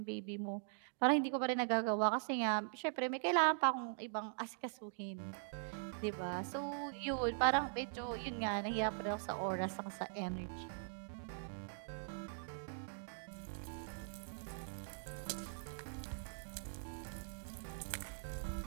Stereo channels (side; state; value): left; silent; digital silence